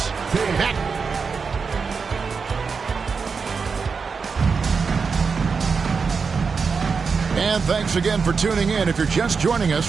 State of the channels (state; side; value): quieter; left; 5.3 dB